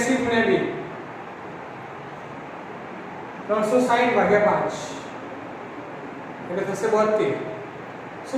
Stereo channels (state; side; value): identical; both; correlation 1.00